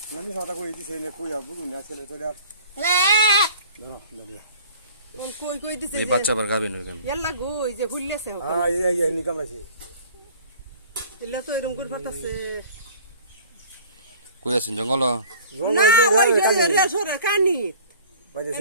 আমি কথা কই দিছি এলে কই আবু না ছেলে তো আর ধরো ধরো কই দিছে এই বাচ্চা আবার গাবিন হইবেন। এলা গো এই যে হুল্লেছে হ্যাঁ এই নি কামড়াইছে এলা তো এরকম করে ফাটাছে কই আছেন জঙ্গল? না ওই যে রে সরে কানি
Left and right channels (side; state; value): both; inverted; correlation -0.47